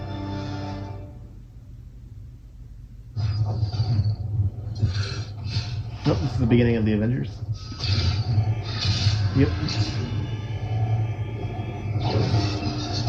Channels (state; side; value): identical; both; correlation 1.00